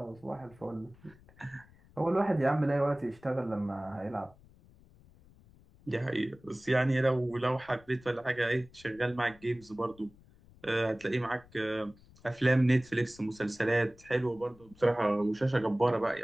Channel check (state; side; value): noise; left; rumble, 25 dB below the sound